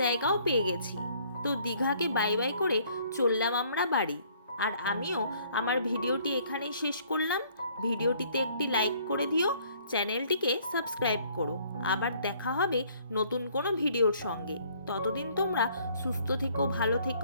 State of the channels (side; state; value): both; inverted; correlation -0.61